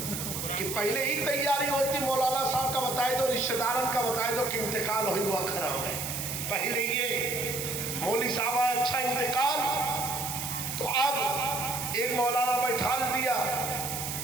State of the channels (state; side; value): noise; right; hiss, 4 dB below the sound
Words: کہ پہلے ہی تیاری ہوتی؟ مولانا صاحب کا بتائے دو، رشتہ داران کا بتائے دو کہ انتقال ہوئی ہوا کھڑا ہے. پہلے یہ مولوی صاحب آیا، اچھا انتقال، تو اب ایک مولانا بیٹھا دیا